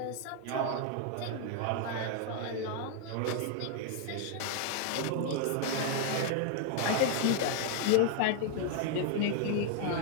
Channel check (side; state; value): both; different; correlation 0.00